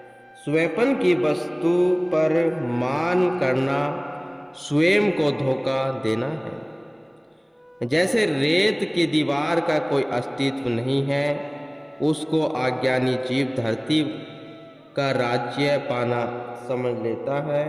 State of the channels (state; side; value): identical; both; correlation 1.00